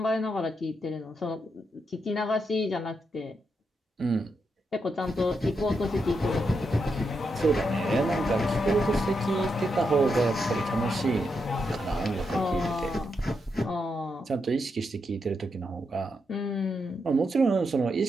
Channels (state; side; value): normal; both; correlation 0.83